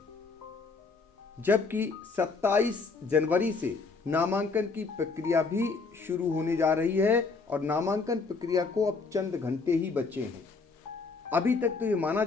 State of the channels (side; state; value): right; quieter; 4.3 dB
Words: जबकि 27 जनवरी से नामांकन की प्रक्रिया भी शुरू होने जा रही है और नामांकन प्रक्रिया को अब चंद घंटे ही बचे हैं। अभी तक तो ये माना